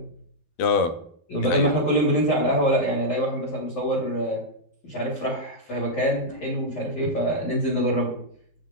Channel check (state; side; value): late; right; 12 ms